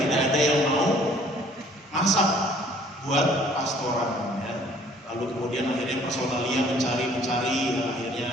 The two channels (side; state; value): both; normal; correlation 0.57